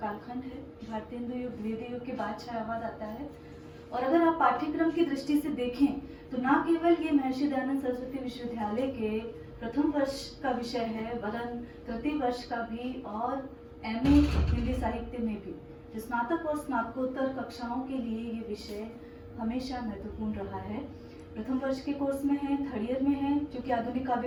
कालखंड है। भारतीय हिंदू युग, द्विवेदी युग के बाद छायावाद आता है। और अगर आप पाठ्यक्रम की दृष्टि से देखें तो ना केवल ये महर्षि दयानंद सरस्वती विश्वविद्यालय के प्रथम वर्ष का विषय है, वरन तृतीय वर्ष का भी और एमए हिंदी साहित्य में भी स्नातक और स्नातकोत्तर कक्षाओं के लिए ये विषय हमेशा महत्वपूर्ण रहा है। प्रथम वर्ष के कोर्स में है, थर्ड ईयर में है, जो कि आधुनिक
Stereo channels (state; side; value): identical; both; correlation 1.00